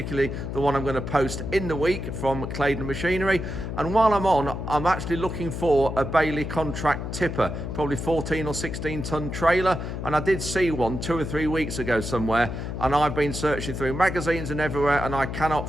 the one I'm going to post in the week from Claydon Machinery. And while I'm on, I'm actually looking for a Bailey contract tipper, probably 14 or 16 tonne trailer. And I did see one 2 or 3 weeks ago somewhere, and I've been searching through magazines and everywhere, and I cannot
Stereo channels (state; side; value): noise; left; hum, 5 dB below the sound